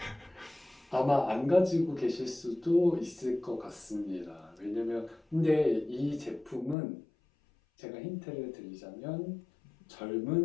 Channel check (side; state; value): right; drops out; at 6.8 s